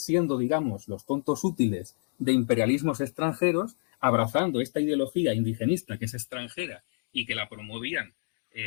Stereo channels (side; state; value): right; silent; digital silence